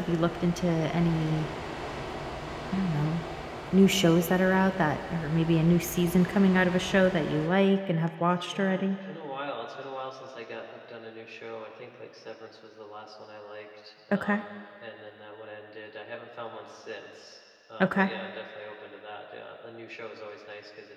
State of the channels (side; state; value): both; identical; correlation 1.00